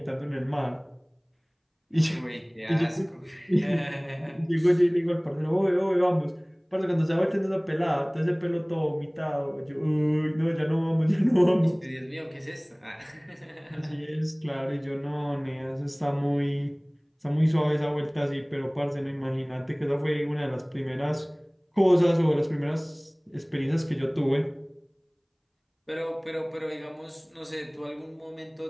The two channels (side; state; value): both; identical; correlation 1.00